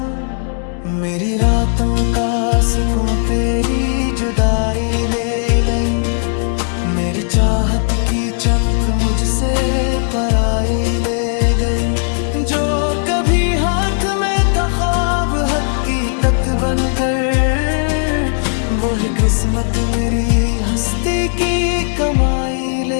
मेरी रातों का सुकून तेरी जुदाई ले लई। मेरी चाहत की चमक मुझसे पराई ले गई। जो कभी हाथ में था ख्वाब हकीकत बनकर, वो ही किस्मत मेरी हस्ती की कमाई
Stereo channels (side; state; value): right; silent; 60 dB below the other